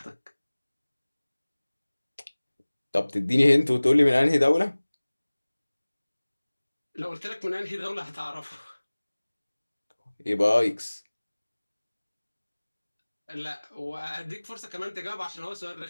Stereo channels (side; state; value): both; inverted; correlation -1.00